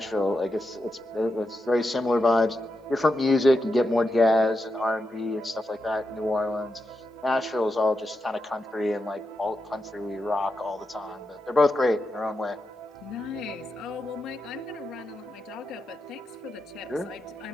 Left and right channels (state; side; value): normal; both; correlation 0.87